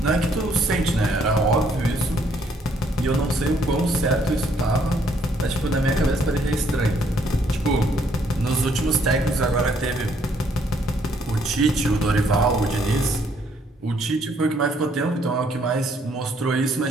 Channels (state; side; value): normal; both; correlation 0.67